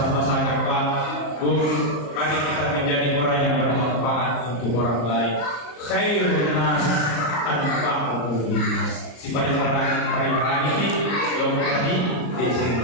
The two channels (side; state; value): right; late; 34 ms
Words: Pak, Bu, mari kita menjadi orang yang bermanfaat untuk orang lain. Khairun nas anfa'uhum linnas. Si paling ini kelompok ini di